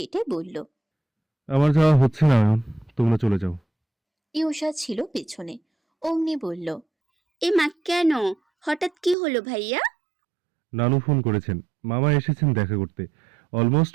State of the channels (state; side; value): drops out; left; at 9.2 s